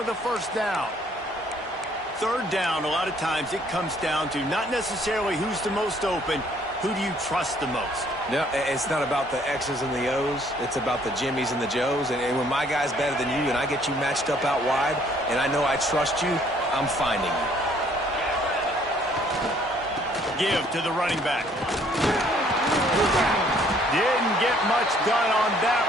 a first down. Third down, a lot of times it comes down to not necessarily who's the most open, who do you trust the most? No, it's not about the X's and the O's. It's about the Jimmies and the Joes. And when my guy's better than you and I get you matched up out wide and I know I trust you, I'm finding you. Give to the running back. Didn't get much done on that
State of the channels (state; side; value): normal; both; correlation 0.62